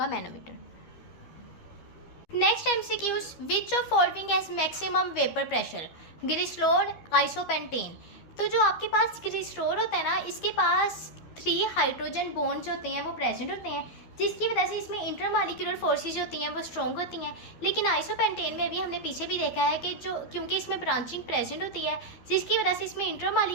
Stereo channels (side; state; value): right; late; 12 ms